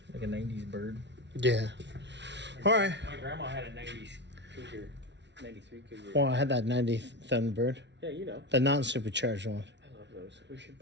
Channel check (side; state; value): left; late; 0.51 ms